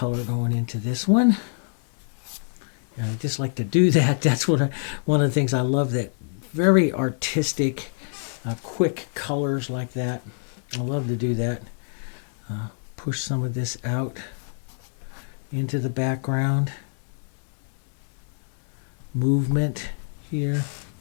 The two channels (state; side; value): silent; right; 61 dB below the other